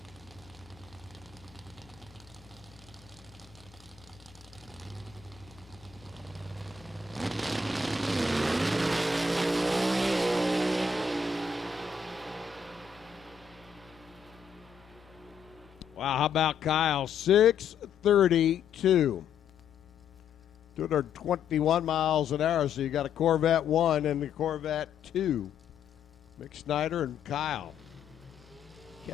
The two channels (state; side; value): quieter; right; 5.8 dB